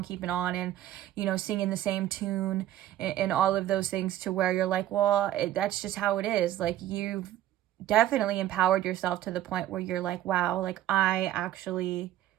keeping on, and, you know, singing the same tune and all of those things, to where you're like, well, that's just how it is. Like, you've definitely empowered yourself to the point where you're like, wow, like, I actually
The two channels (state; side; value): quieter; left; 13.0 dB